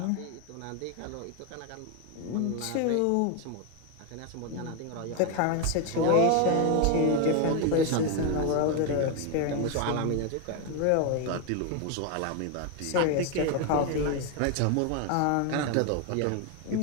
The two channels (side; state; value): both; different; correlation 0.01